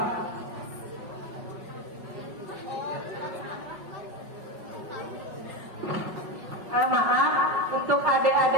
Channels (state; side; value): late; left; 5.3 ms